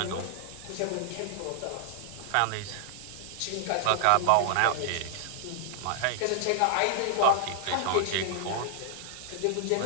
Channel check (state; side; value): different; both; correlation 0.00